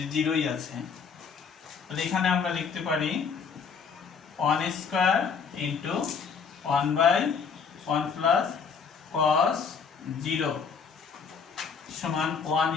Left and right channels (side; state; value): right; quieter; 6.0 dB